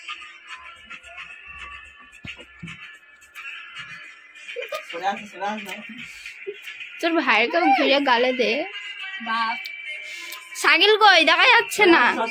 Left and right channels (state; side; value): identical; both; correlation 1.00